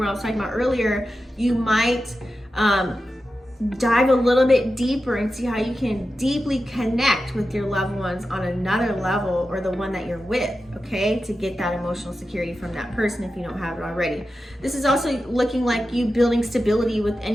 I was talking about earlier, you might dive a little bit deeper and see how you can deeply connect with your loved ones on another level, or the one that you're with, okay, to get that emotional security from that person if you don't have it already. This is also looking like you building stability with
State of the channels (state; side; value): normal; both; correlation 0.92